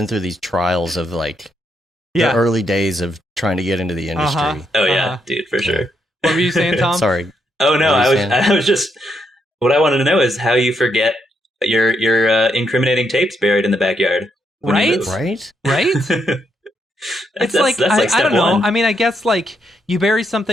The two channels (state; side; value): normal; both; correlation 0.78